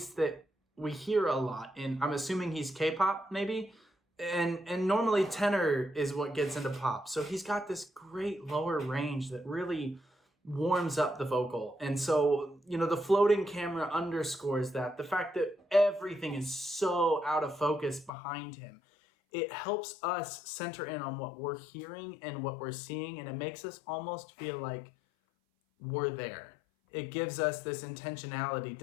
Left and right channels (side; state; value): right; drops out; at 18.1 s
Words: that we hear a lot in, I'm assuming he's K-pop maybe. And normally tenor is what gets into pop. So he's got this great lower range that really warms up the vocal. And so, you know, the floating camera underscores that. The fact that everything is so out of focus behind him. It helps us center in on what we're hearing and what we're seeing. And it makes us almost feel like we're there. It gives us this intentionality.